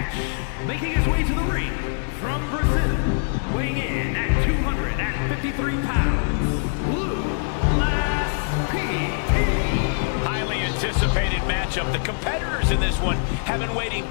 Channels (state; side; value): silent; right; digital silence